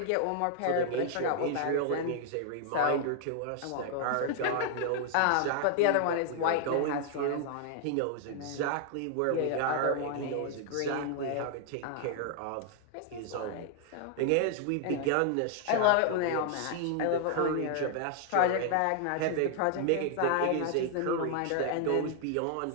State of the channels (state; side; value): different; both; correlation 0.00